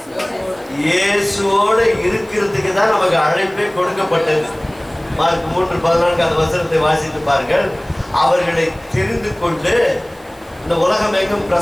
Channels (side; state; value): right; noise; hiss, 28 dB below the sound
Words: இயேசுவோட இருக்கிறதுக்கு தான் நமக்கு அழைப்பே கொடுக்கப்பட்டது. மார்க் 3:14 அந்த வசனத்தை வாசித்து பாருங்கள். அவர்களை தெரிந்து கொண்டு இந்த உலகம் எங்கும்